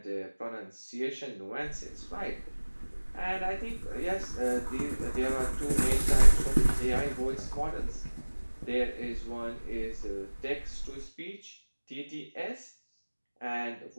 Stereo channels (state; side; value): inverted; both; correlation -1.00